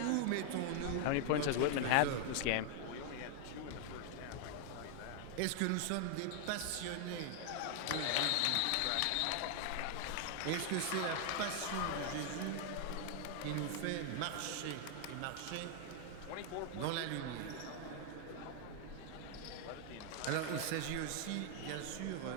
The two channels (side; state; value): both; different; correlation 0.00